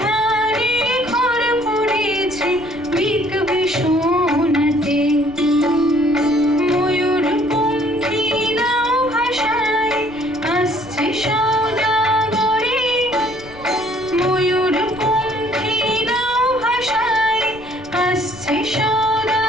ধানে ঘর পড়েছে বিকবি সোনাতে। ময়ূর পঙ্খী নাও ভাষায় আসছে সওদাগরে, ময়ূর পঙ্খী নাও ভাষায় আসছে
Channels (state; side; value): noise; left; rumble, 20 dB below the sound